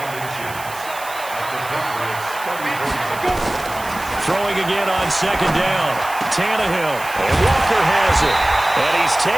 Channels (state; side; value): noise; right; hiss, 15 dB below the sound